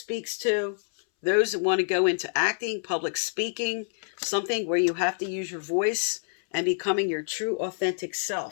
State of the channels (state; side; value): silent; right; 60 dB below the other